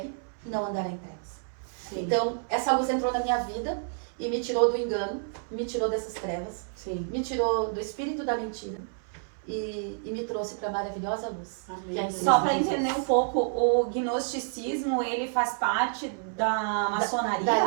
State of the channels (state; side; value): silent; left; 59 dB below the other